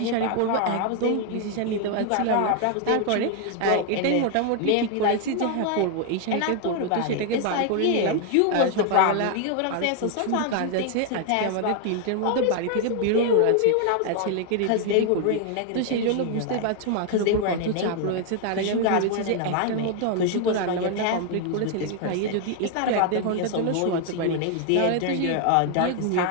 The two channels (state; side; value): different; both; correlation 0.00